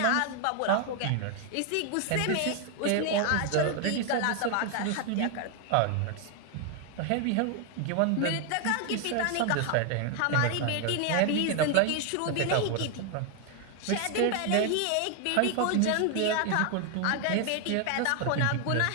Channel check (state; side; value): different; both; correlation 0.01